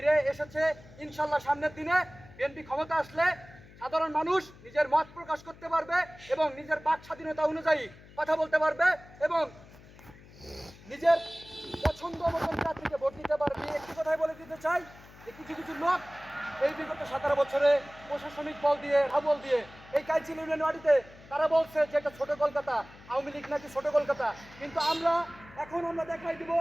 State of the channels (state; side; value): noise; left; hum, 21 dB below the sound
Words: এসেছে। ইনশাল্লাহ সামনের দিনে বিএনপি ক্ষমতা আসলে সাধারণ মানুষ নিজের মত প্রকাশ করতে পারবে এবং নিজের বাক স্বাধীনতা অনুযায়ী কথা বলতে পারবে এবং নিজের পছন্দ মতন প্রার্থীকে ভোট দিতে পারবে। একটি কথাই বলে দিতে চাই যে কিছু কিছু লোক এই বিগত 17 বছরে প্রশাসনিক বল দিয়ে, হাবল দিয়ে এই কাইচিল ইউনিয়ন ওয়ার্ডে তারা বলছে যে এটা ছোট কলকাতা, আওয়ামী লীগ নাকি ছোট কলকাতা। কিন্তু আমরা দেখাই দিব